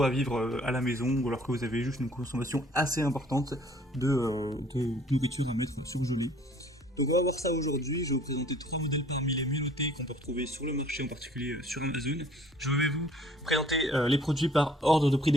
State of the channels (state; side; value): normal; both; correlation 0.56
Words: à vivre à la maison, ou alors que vous avez juste une consommation assez importante de nourriture à mettre surgelée. Donc on va voir ça aujourd'hui. Je vais vous présenter 3 modèles parmi les mieux notés qu'on peut retrouver sur le marché, en particulier sur Amazon. Je vais vous présenter les produits par ordre de prix